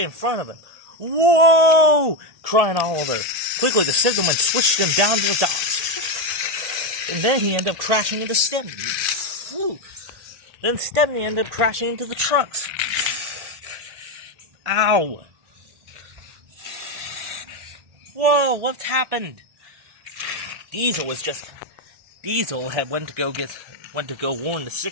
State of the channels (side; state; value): left; late; 1.8 ms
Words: in front of him. Whoa! Cried Oliver. Quickly, the signalman switched him down to the docks. And then he ended up crashing into Stepney. Whew. Then Stepney ended up crashing into the trucks. Ow! Whoa, what's happened? Diesel had went to go warn the